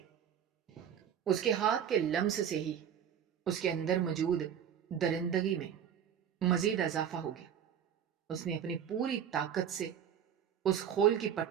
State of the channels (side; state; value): left; quieter; 8.8 dB